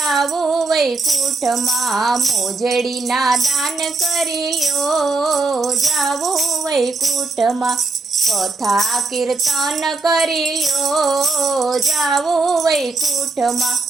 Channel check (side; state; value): left; quieter; 3.7 dB